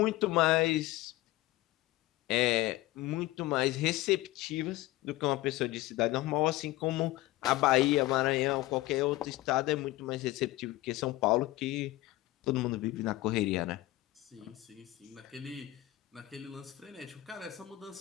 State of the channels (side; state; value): right; quieter; 17.6 dB